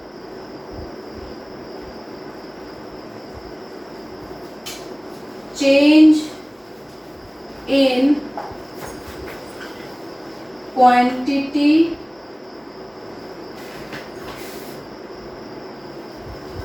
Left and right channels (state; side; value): identical; both; correlation 1.00